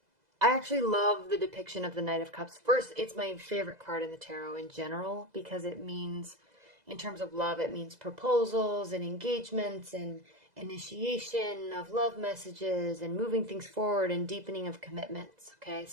I actually love the depiction of the Knight of Cups. First, it's my favorite card in the tarot in general because it means, in terms of love, it means proposals and engagements and initiation of love messages and moving things forward and deepening of commitments. Okay,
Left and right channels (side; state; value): left; late; 2.0 ms